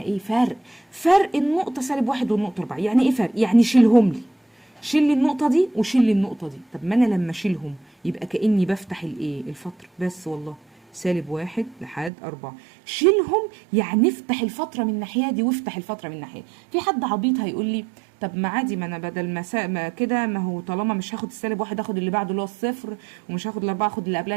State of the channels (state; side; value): drops out; left; at 12.1 s